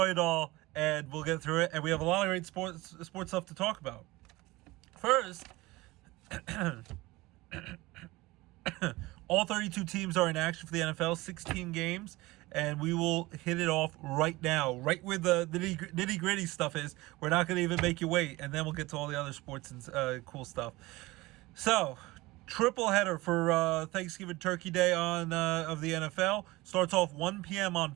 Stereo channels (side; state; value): left; quieter; 20.5 dB